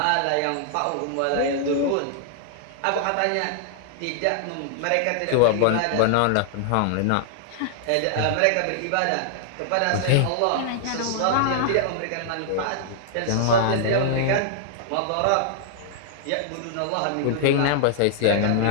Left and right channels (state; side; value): different; both; correlation -0.01